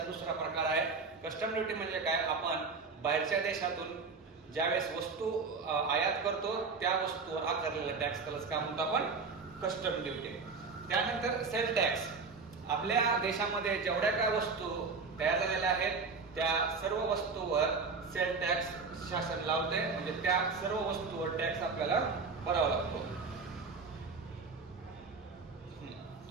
दुसरा प्रकार आहे. कस्टम ड्युटी म्हणजे काय, आपण बाहेरच्या देशातून ज्यावेळेस वस्तू आयात करतो त्या वस्तूवर आकारलेला टॅक्स, त्यालाच काय म्हणतो आपण, कस्टम ड्युटी. त्यानंतर सेल टॅक्स. आपल्या देशामध्ये जेवढ्या काय वस्तू तयार झालेल्या आहेत त्या सर्व वस्तूवर सेल टॅक्स शासन लावते. म्हणजे त्या सर्व वस्तूवर टॅक्स आपल्याला भरावा लागतो.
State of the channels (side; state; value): left; quieter; 4.5 dB